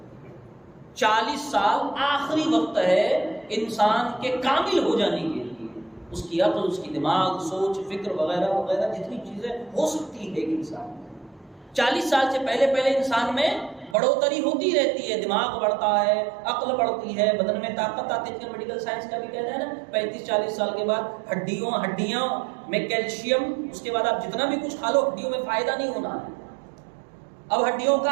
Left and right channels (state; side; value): drops out; left; at 14.0 s